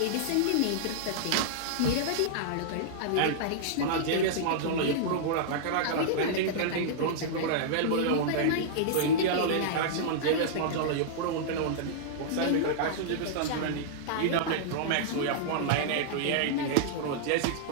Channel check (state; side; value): different; both; correlation -0.02